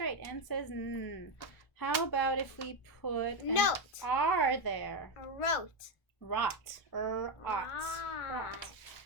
N says N. How about if we put Note. an R there? Wrote. Rot, ought. Rot.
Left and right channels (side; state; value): right; late; 1.2 ms